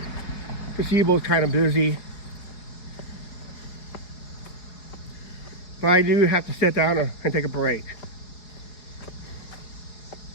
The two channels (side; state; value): right; late; 5.0 ms